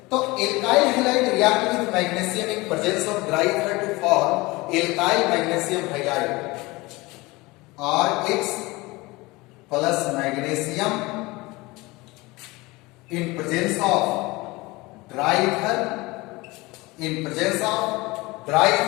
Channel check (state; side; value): quieter; right; 22.4 dB